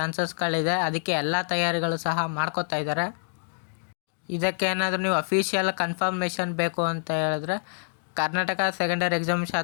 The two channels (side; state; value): right; silent; digital silence